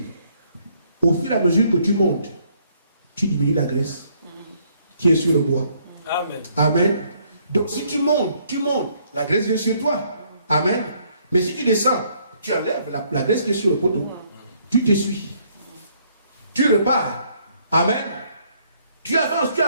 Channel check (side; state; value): both; inverted; correlation -0.67